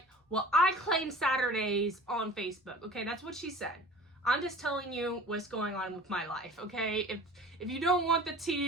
well, I claim Saturdays on Facebook. Okay, that's what she said. I'm just telling you what's going on with my life. Okay, if you don't want the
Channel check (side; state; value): both; normal; correlation 0.43